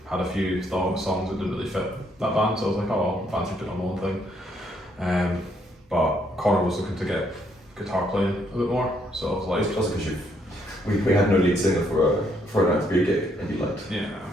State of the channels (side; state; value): both; normal; correlation 0.72